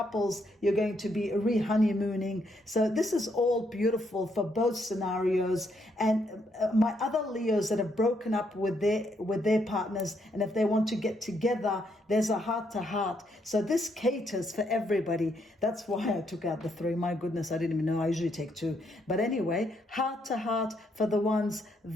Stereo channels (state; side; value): normal; both; correlation 0.75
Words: you're going to be re-honeymooning. So this is all beautiful for both scenarios. And my other Leos that have broken up with their partners, and if they want to get together, there's a heart-to-heart. So this caters for everybody. That's why I took out the 3. My goodness, I didn't even know. I usually take 2. But anyway, heart-to-heart for the ones